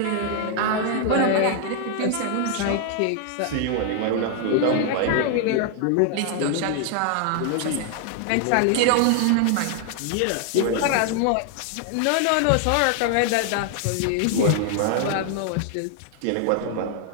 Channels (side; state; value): both; different; correlation 0.00